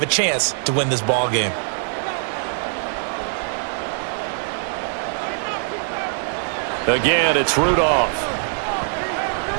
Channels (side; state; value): left; silent; digital silence